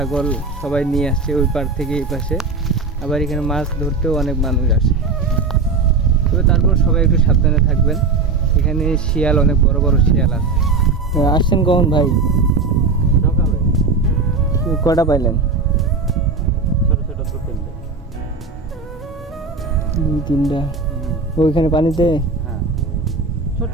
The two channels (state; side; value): quieter; left; 4.2 dB